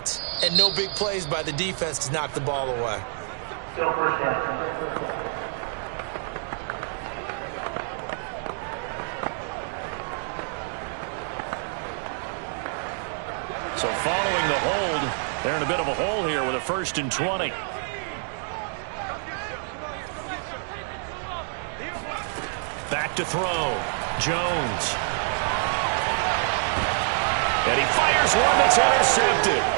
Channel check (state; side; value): silent; left; 60 dB below the other